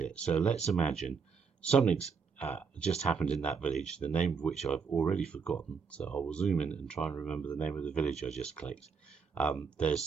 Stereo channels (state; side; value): quieter; left; 5.7 dB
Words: So let's imagine something's just happened in that village, the name of which I've already forgotten. So I will zoom in and try and remember the name of the village I just clicked.